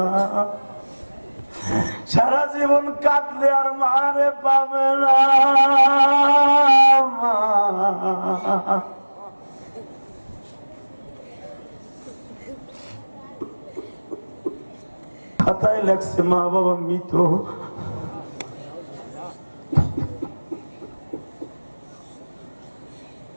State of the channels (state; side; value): inverted; both; correlation -1.00